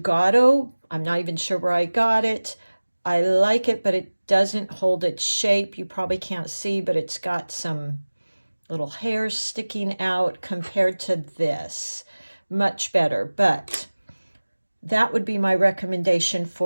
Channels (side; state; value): both; inverted; correlation -1.00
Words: I'm not even sure where I got it. I like it, but it doesn't hold its shape. You probably can't see, but it's got some little hairs sticking out compared to this. Much better, but that would be my recommendation